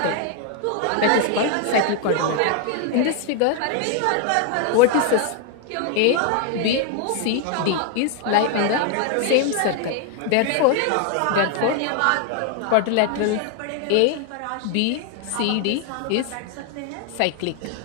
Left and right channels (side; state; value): both; different; correlation 0.00